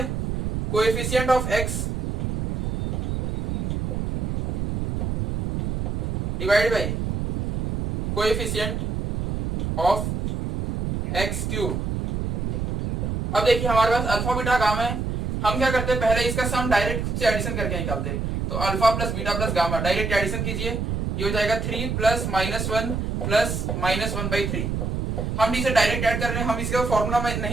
coefficient of x divide by coefficient of x cube. अब देखिए हमारे पास अल्फा बीटा गामा है, हम क्या करते हैं, पहले इसका सम डायरेक्ट खुद से एडिशन करके निकालते हैं। तो alpha plus beta plus gamma direct addition कीजिए, ये हो जाएगा 3 प्लस -1 प्लस -1/3। हम इसे डायरेक्ट ऐड कर रहे हैं, हम इसका फॉर्मूला में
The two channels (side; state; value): right; noise; rumble, 2 dB below the sound